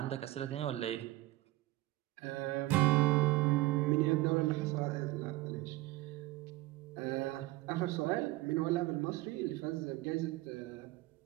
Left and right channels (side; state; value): left; quieter; 19.0 dB